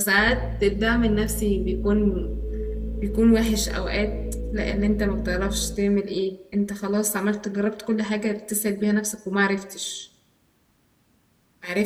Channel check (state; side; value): identical; both; correlation 1.00